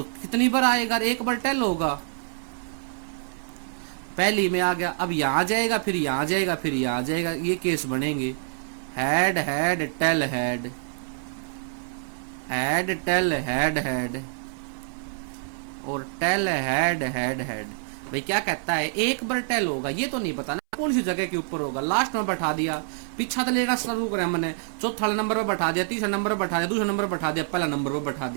कितनी बार आएगा, एक बार टेल होगा, पहली में आ गया, अब यहां जाएगा, फिर यहां जाएगा, फिर यहां जाएगा, ये केस बनेंगे head head tail head, head tail head head, और टेल हेड हेड हेड। भाई क्या कहता है, एक बार टेल होगा, ये तो नहीं पता ना कौन सी जगह के ऊपर होगा, लास्ट में बैठा दिया, पीछा तो लेना शुरू करें हमने, चौथा नंबर पर बैठा दिया, तीसरा नंबर पर बैठा दिया, दूसरा नंबर पर बैठा दिया, पहला नंबर पर बैठा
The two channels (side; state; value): left; silent; 61 dB below the other